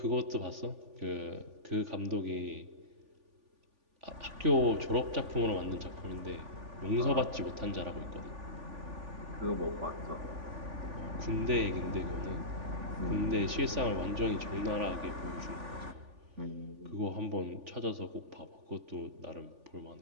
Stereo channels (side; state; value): left; late; 3.5 ms